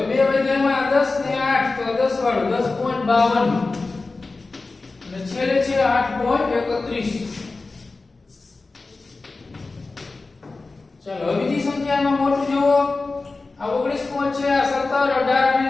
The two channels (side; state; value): right; quieter; 3.6 dB